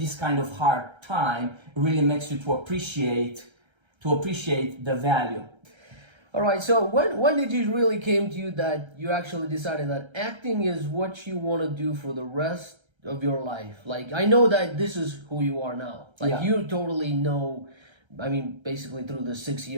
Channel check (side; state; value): left; late; 1.3 ms